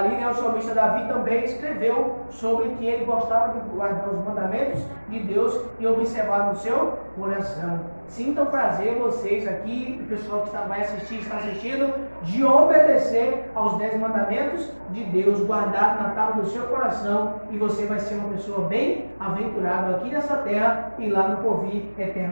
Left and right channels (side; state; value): both; inverted; correlation -1.00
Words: né, o salmista Davi também escreveu sobre que ele gostava de guardar os mandamentos de Deus e observar no seu coração. Sintam prazer vocês aqui, o pessoal que vai assistir, está assistindo, de obedecer aos 10 mandamentos de Deus, guardado na tábua do seu coração, e você vai ser uma pessoa bem aventurada aqui nessa terra e lá no porvir